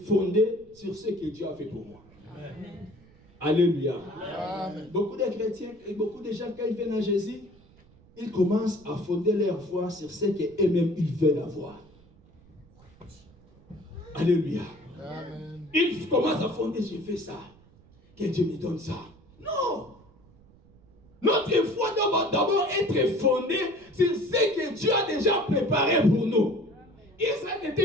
fondée sur ce que Dieu a fait pour moi. Amen. Alléluia. Amen. Beaucoup de chrétiens et beaucoup de gens, quand ils viennent à Jésus, ils commencent à fonder leur foi sur ce qu'eux-mêmes ils veulent avoir. Alléluia. Amen. Ils commencent à fonder, j'ai fait ça. Que Dieu me donne ça. Non. Notre foi doit d'abord être fondée sur ce que Dieu a déjà préparé pour nous. Israël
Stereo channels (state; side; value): noise; right; rumble, 27 dB below the sound